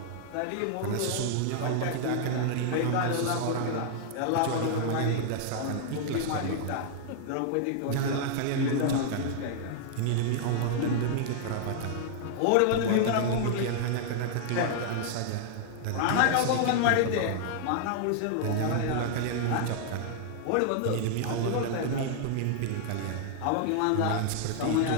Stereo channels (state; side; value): different; both; correlation -0.01